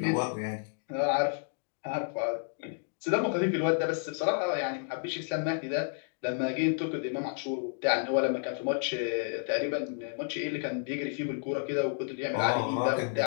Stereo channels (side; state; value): right; silent; digital silence